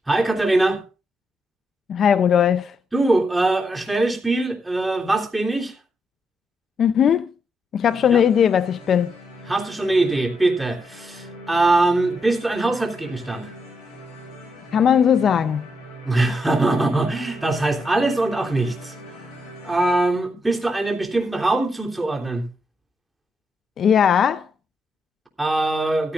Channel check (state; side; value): normal; both; correlation 0.80